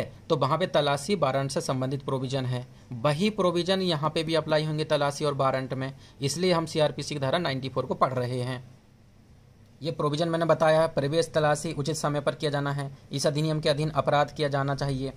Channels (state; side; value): identical; both; correlation 1.00